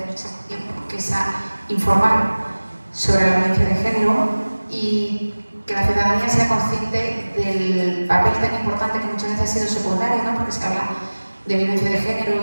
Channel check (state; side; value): inverted; both; correlation -1.00